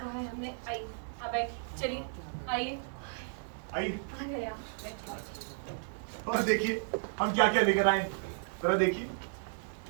है हमने, आइए। अब चलिए, आइए। आइए। और देखिए हम क्या क्या लेकर आए, जरा देखिए।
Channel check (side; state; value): left; silent; digital silence